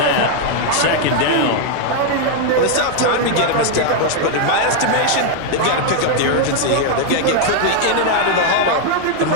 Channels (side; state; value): both; different; correlation 0.00